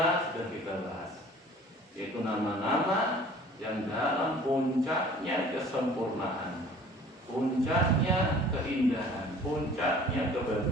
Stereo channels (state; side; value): normal; both; correlation 0.49